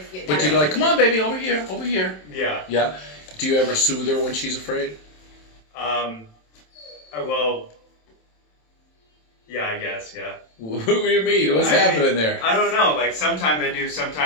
you. But you go like, come on, baby, over here, over here. Yeah. Yeah. Do you ever soothe her when she's afraid? Well. Yeah, I guess. Yeah. What do you mean? What's I mean, happening there? I don't know. Like sometimes I do,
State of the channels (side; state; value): right; late; 27 ms